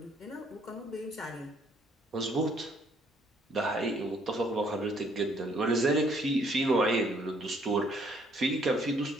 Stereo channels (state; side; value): normal; both; correlation 0.65